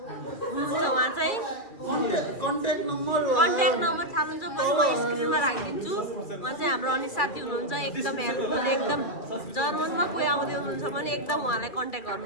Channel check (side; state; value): right; late; 2.3 ms